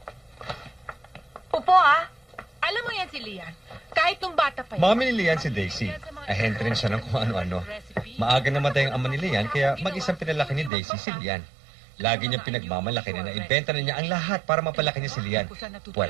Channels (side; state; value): left; drops out; at 10.7 s